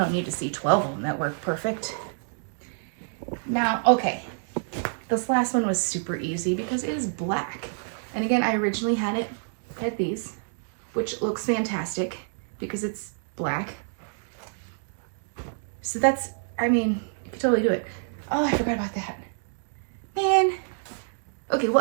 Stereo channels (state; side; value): silent; left; digital silence